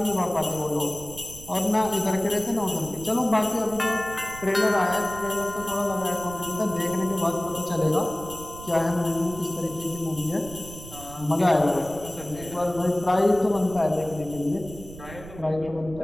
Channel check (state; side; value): noise; right; rumble, 15 dB below the sound